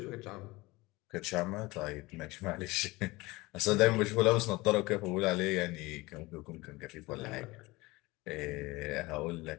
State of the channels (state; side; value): quieter; right; 21.8 dB